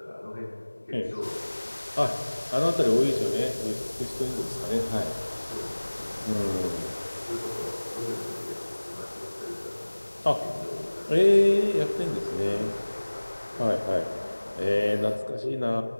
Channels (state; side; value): inverted; both; correlation -1.00